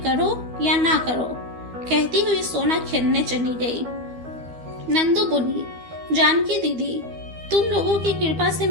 या ना करो। कहती हुई सोना खेलने चली गई। नंदू बोली, जानकी दीदी, तुम लोगों की कृपा से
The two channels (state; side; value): late; left; 12 ms